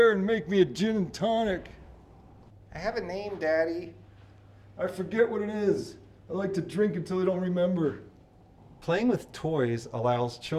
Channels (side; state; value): both; identical; correlation 1.00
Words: and make me a gin and tonic. I have a name, Daddy. I forget what it is. I like to drink until I don't remember. Playing with toys allows